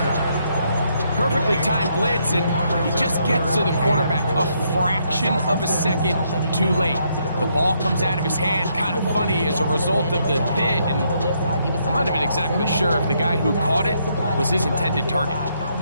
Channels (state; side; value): inverted; both; correlation -0.74